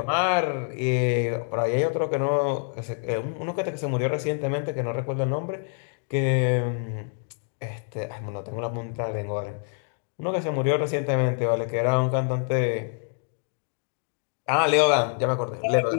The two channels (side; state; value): right; silent; 61 dB below the other